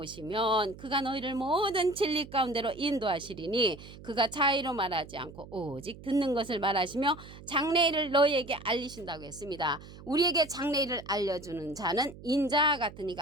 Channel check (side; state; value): right; noise; hum, 17 dB below the sound